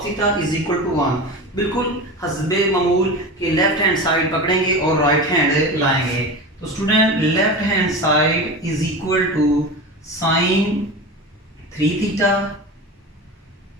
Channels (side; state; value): both; normal; correlation 0.28